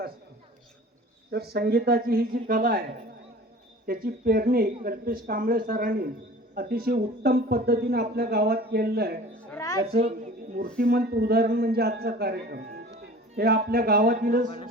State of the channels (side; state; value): both; normal; correlation 0.42